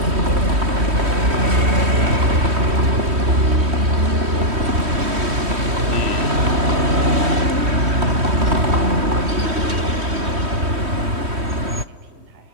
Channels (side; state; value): left; late; 3.1 ms